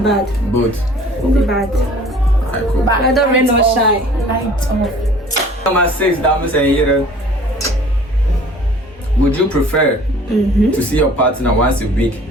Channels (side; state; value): both; normal; correlation 0.50